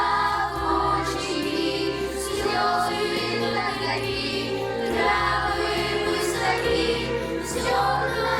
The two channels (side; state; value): both; identical; correlation 1.00